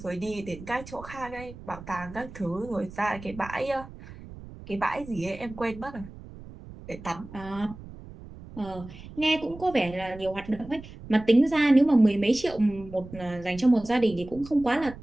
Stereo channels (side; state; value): right; noise; rumble, 16 dB below the sound